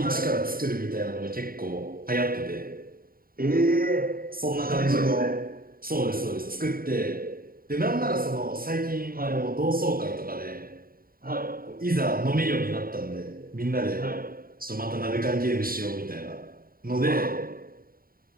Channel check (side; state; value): left; late; 0.42 ms